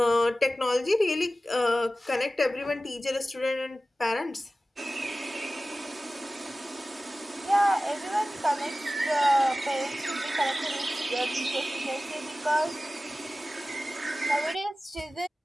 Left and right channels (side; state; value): both; normal; correlation 0.96